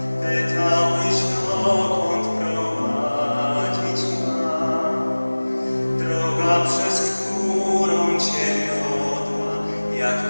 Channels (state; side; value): inverted; both; correlation -1.00